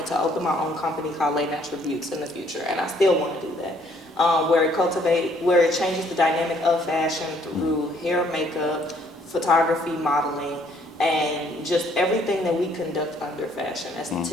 to open my own company called Lay Natural Beauties in the future, and I still want to do that. Where it changes the dynamic of fashion through hair, makeup, photography, modeling, and just everything that we conduct under fashion,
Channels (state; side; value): normal; both; correlation 0.64